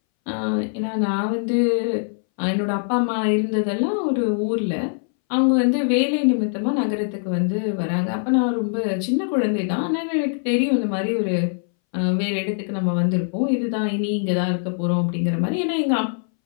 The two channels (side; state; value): right; silent; 63 dB below the other